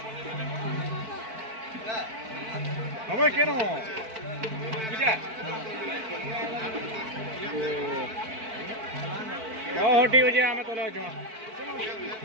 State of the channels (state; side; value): late; left; 4.5 ms